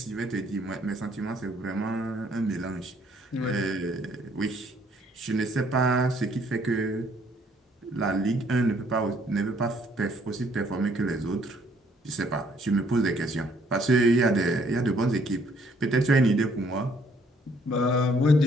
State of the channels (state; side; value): normal; both; correlation 0.64